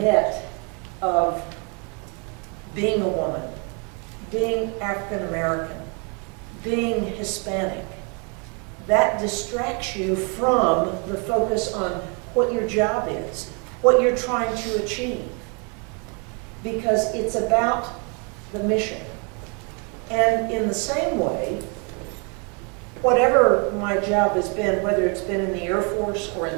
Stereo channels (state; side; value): quieter; left; 35.2 dB